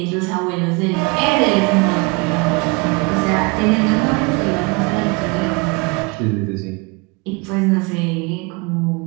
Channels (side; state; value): left; quieter; 27.9 dB